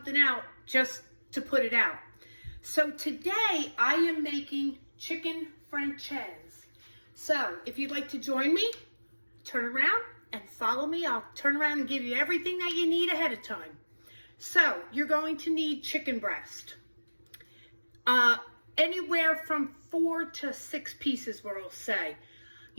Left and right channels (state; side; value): inverted; both; correlation -1.00